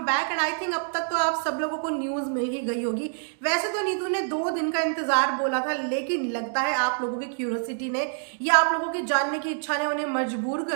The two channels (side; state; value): left; silent; digital silence